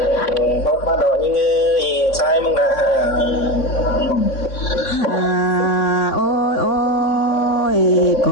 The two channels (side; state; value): right; late; 3.6 ms